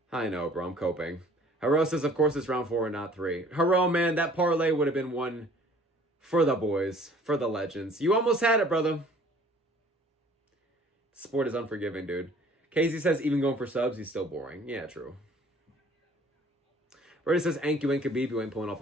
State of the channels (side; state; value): both; normal; correlation 0.53